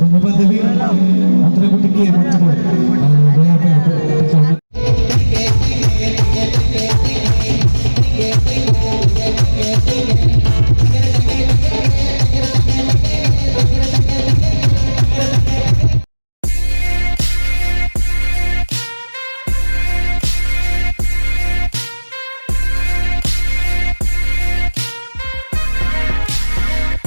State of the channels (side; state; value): both; inverted; correlation -1.00